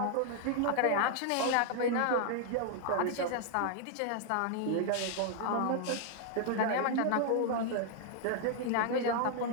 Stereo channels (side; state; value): both; different; correlation 0.00